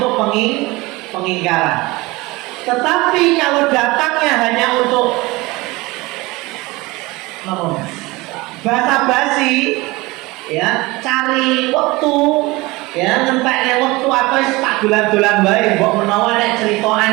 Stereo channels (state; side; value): quieter; left; 22.0 dB